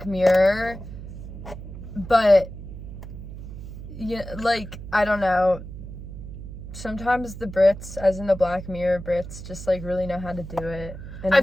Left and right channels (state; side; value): noise; right; hum, 11 dB below the sound